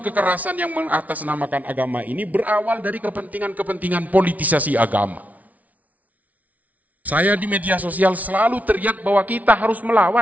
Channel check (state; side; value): late; left; 0.072 ms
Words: kekerasan yang mengatasnamakan agama ini berawal dari kepentingan-kepentingan politisasi agama. Saya di media sosial selalu teriak bahwa kita harus